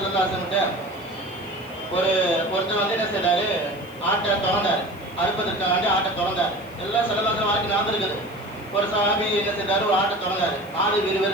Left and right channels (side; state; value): left; noise; hiss, 26 dB below the sound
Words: அலைஹி வஸல்லம் ஒருத்தர் வந்து என்ன செய்றாரு, ஆட்டை திறந்தாரு, அறுப்பதற்காண்டி ஆட்டை திறந்தாரு. எல்லாம் ஸல்லல்லாஹு அலைஹி வஸல்லம் ஞாபகம் இருக்குது. ஒரு சஹாபி என்ன செய்தாரு, ஒரு ஆட்டை திறந்தாரு, ஆடு